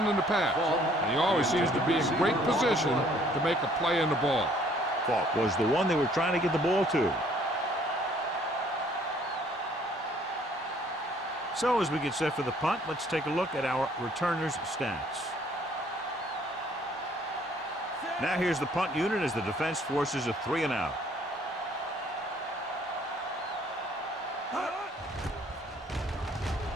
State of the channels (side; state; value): both; normal; correlation 0.60